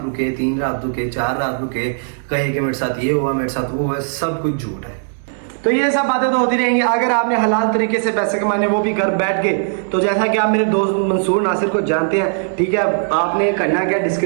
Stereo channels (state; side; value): silent; left; digital silence